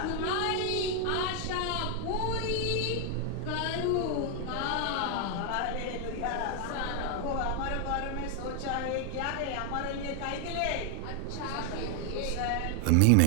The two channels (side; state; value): both; different; correlation 0.00